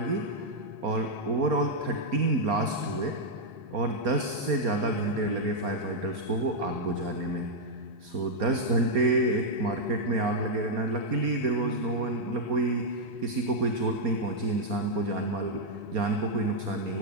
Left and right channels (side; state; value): left; late; 4.3 ms